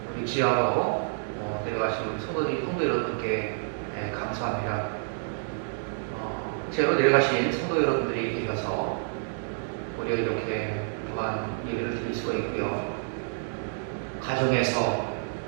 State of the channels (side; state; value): left; silent; digital silence